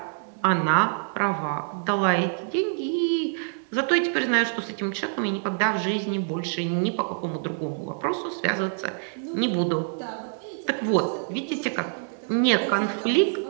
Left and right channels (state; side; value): silent; left; digital silence